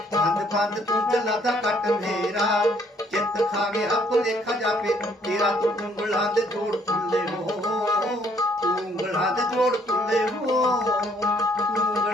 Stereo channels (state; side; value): normal; both; correlation 0.65